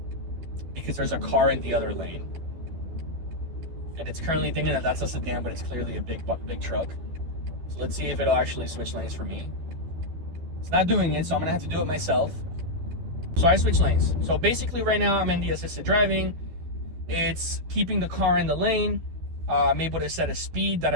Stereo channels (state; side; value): late; left; 12 ms